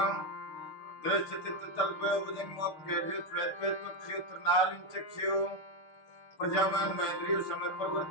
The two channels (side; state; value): right; late; 6.8 ms